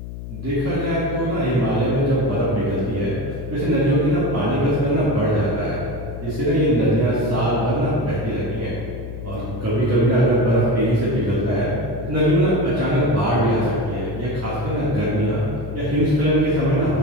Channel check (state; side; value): noise; left; hum, 10 dB below the sound